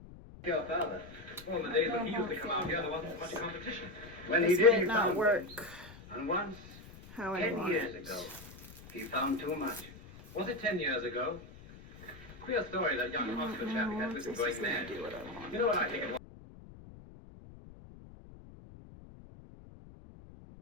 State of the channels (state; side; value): noise; left; rumble, 18 dB below the sound